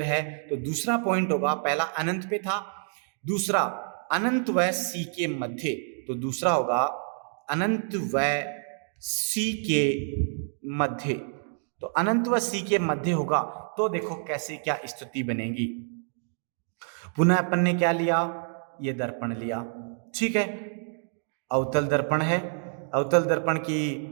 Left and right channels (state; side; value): silent; left; 60 dB below the other